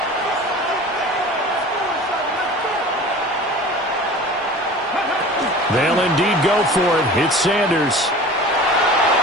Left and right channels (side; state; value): both; normal; correlation 0.40